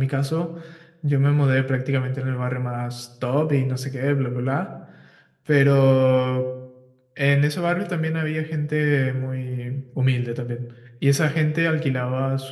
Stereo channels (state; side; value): identical; both; correlation 1.00